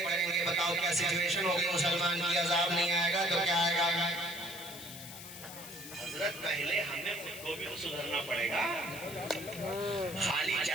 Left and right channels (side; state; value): left; noise; hiss, 12 dB below the sound